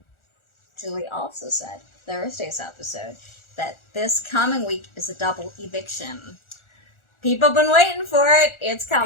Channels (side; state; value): right; late; 1.4 ms